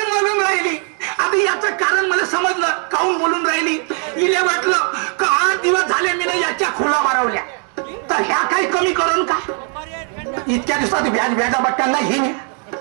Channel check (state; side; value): quieter; left; 38.0 dB